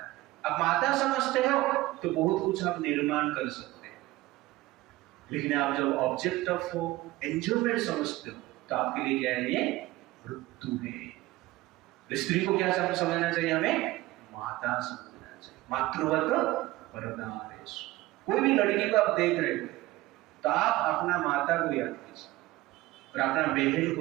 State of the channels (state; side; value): quieter; left; 18.5 dB